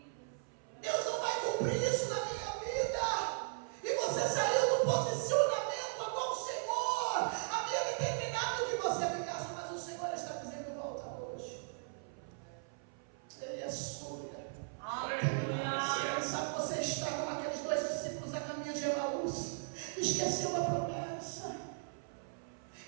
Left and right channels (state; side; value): silent; left; 53 dB below the other